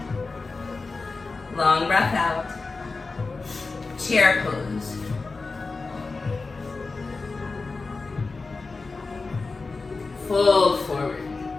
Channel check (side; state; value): right; quieter; 3.9 dB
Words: Long breath out. Chair pose. Fold forward.